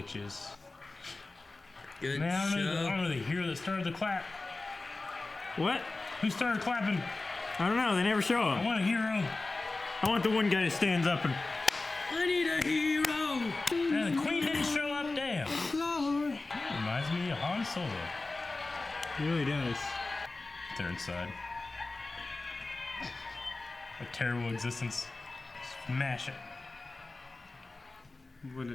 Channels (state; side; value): quieter; right; 3.3 dB